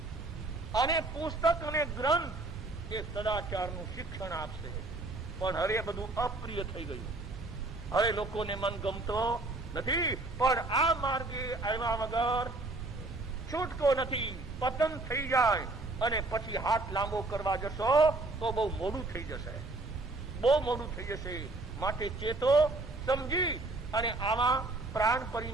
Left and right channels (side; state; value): left; quieter; 3.0 dB